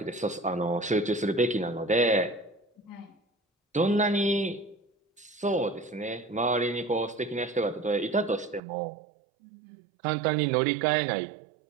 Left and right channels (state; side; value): drops out; left; at 8.6 s